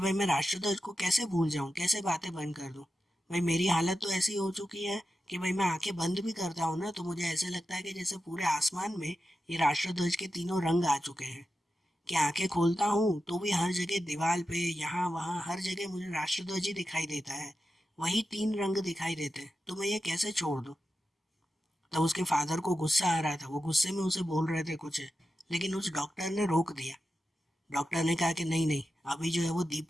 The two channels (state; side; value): normal; both; correlation 0.91